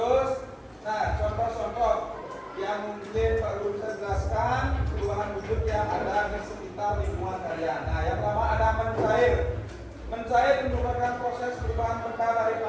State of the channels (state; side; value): identical; both; correlation 1.00